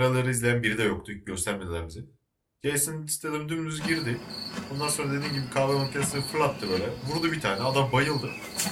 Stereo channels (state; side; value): identical; both; correlation 1.00